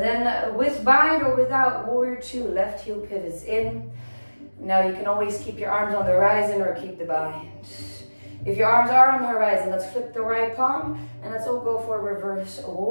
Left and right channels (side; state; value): both; inverted; correlation -1.00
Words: then with bind or without, warrior 2, left heel pivots in. Now you can always keep your arms on the horizon or keep the bind. If your arms are on the horizon, let's flip the right palm and let's all go for a reverse